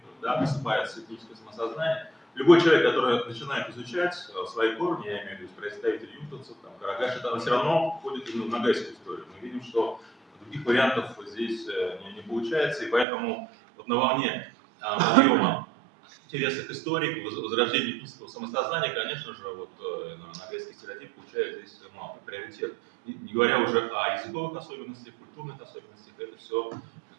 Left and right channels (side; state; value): left; drops out; at 13.1 s